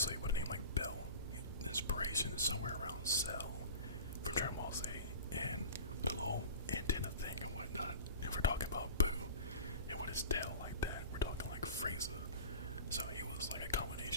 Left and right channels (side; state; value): both; inverted; correlation -0.37